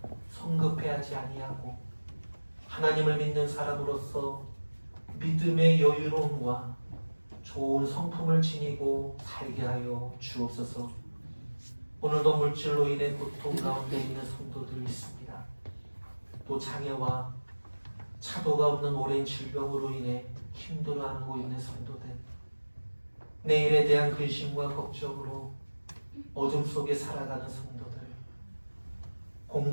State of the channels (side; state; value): both; inverted; correlation -1.00